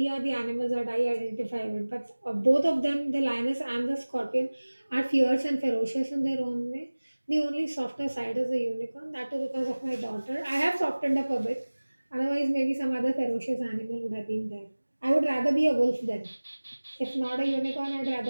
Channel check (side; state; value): both; inverted; correlation -1.00